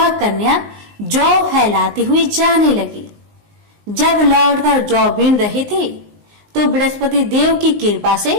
कन्या जौ फैलाती हुई जाने लगी। जब लौटकर जौ बीन रही थी तो बृहस्पति देव की कृपा से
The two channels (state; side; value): late; left; 19 ms